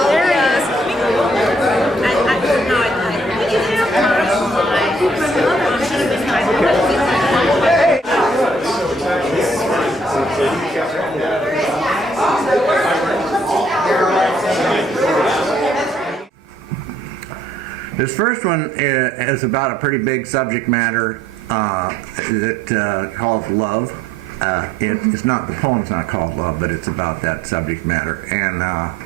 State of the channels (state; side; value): normal; both; correlation 0.64